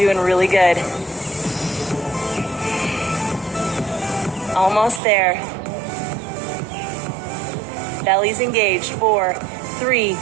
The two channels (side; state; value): left; drops out; at 5.0 s